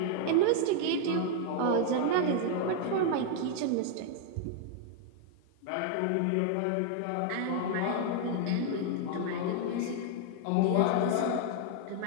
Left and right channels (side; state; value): both; different; correlation 0.00